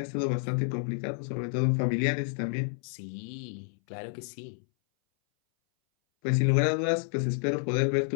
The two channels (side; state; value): right; silent; 58 dB below the other